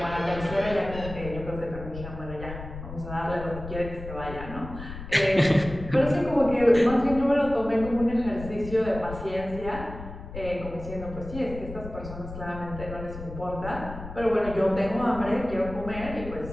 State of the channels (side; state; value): left; noise; rumble, 11 dB below the sound